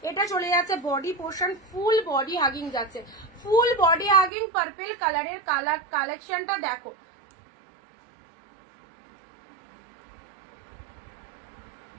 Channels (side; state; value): left; drops out; at 4.3 s